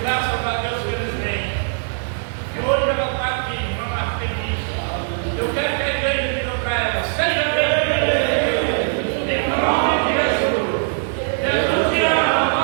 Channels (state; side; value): silent; left; 65 dB below the other